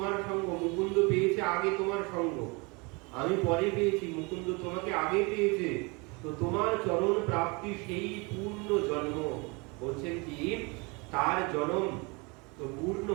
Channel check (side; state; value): left; quieter; 28.7 dB